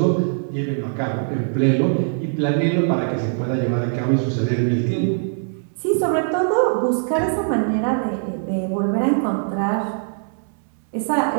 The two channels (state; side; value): silent; left; 65 dB below the other